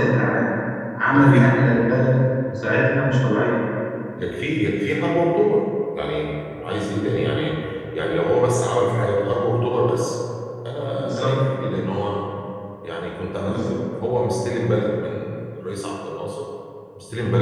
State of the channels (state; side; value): identical; both; correlation 1.00